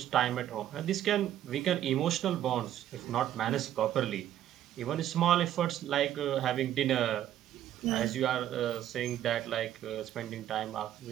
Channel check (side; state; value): left; quieter; 11.8 dB